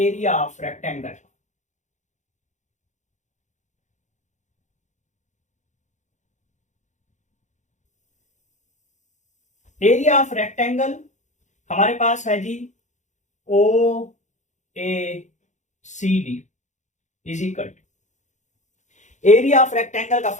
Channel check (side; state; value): right; late; 0.35 ms